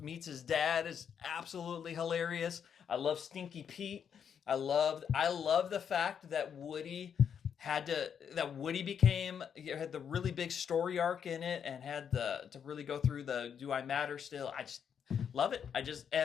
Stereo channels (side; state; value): right; quieter; 7.7 dB